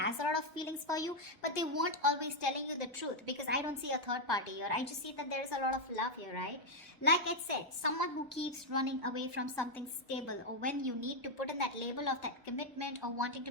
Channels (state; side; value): normal; both; correlation 0.01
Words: a lot of feelings for you, but they won't always telling you the truth, because I don't see a third party here. I just see that there's a lot of love here, right? Like I said, someone who keeps running away from something stable, or when you need to put in that label of that commitment or wanting to